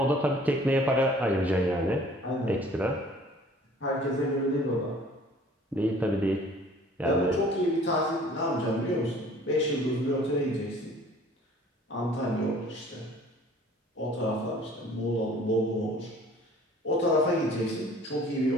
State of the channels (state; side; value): normal; both; correlation 0.52